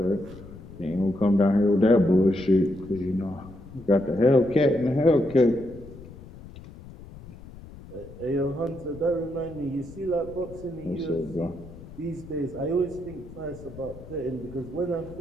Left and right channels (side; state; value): left; noise; rumble, 17 dB below the sound